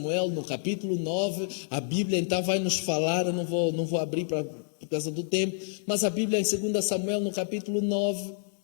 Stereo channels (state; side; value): silent; right; 59 dB below the other